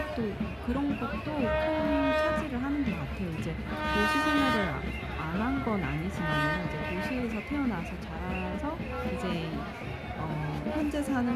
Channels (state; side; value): identical; both; correlation 1.00